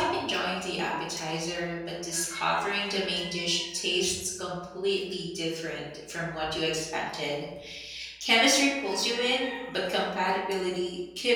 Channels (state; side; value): identical; both; correlation 1.00